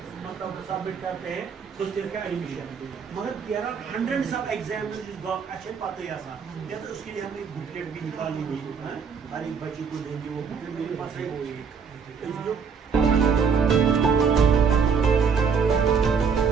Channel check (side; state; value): left; quieter; 6.0 dB